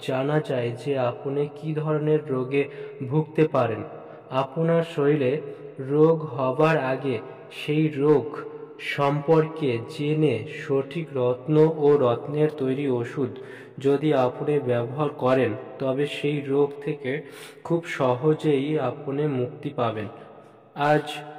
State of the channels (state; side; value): identical; both; correlation 1.00